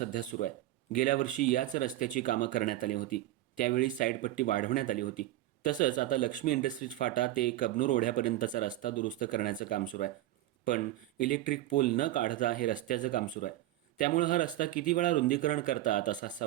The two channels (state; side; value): quieter; left; 14.9 dB